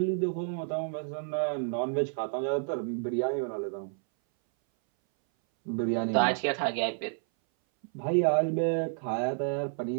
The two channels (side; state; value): left; silent; 58 dB below the other